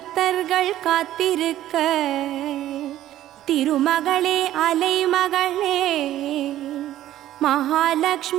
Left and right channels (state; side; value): quieter; left; 13.3 dB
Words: காத்திருக்க திருமகளே அலைமகளே,